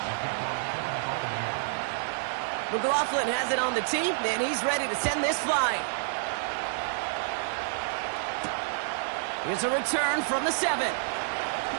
McLaughlin has it on the tee, and he's ready to send this flying. Here's a return from the 7.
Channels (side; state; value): left; silent; digital silence